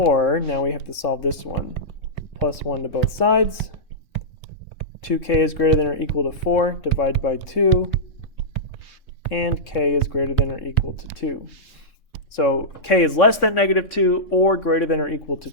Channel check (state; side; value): late; right; 3.5 ms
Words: now we have to solve this one. Plus 1 to both sides. 2k is greater than or equal to 4. Divide by 2. And k is greater than or equal to 2. So k is less than -2 or greater than or equal to